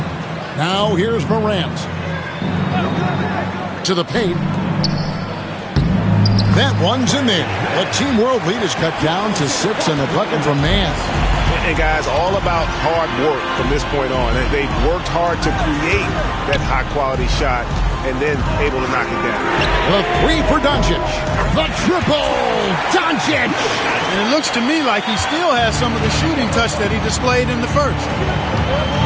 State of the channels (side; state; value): both; identical; correlation 1.00